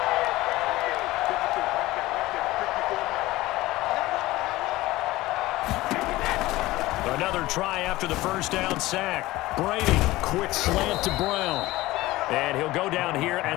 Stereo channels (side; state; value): right; quieter; 18.2 dB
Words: Another try after the first down sack. Brady, quick slant to Brown. And he'll go down here